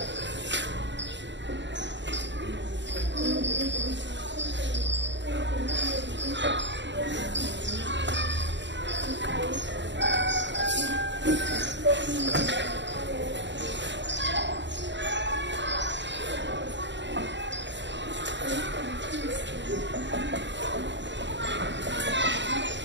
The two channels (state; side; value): late; left; 0.53 ms